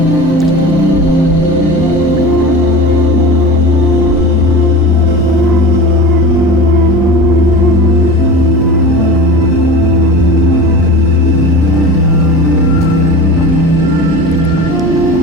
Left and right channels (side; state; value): both; normal; correlation 0.33